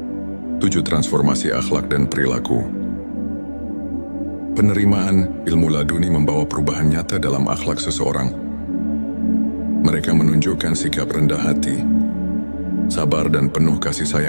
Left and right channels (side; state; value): both; inverted; correlation -1.00